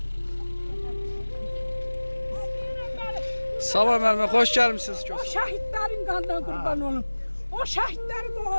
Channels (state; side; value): inverted; both; correlation -1.00